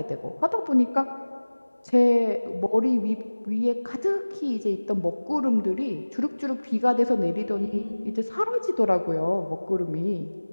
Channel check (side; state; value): both; inverted; correlation -1.00